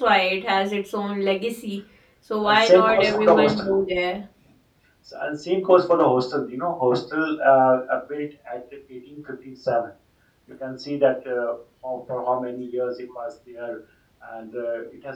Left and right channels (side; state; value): both; identical; correlation 1.00